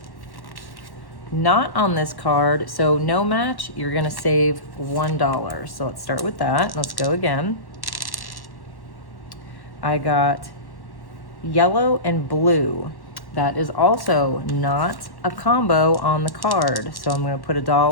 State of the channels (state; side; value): late; right; 1.1 ms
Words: not on this card, so no match, you're gonna save $1. So let's start with that. Let's go again. I got yellow and blue. That is also not a combo on the card. So I'm gonna put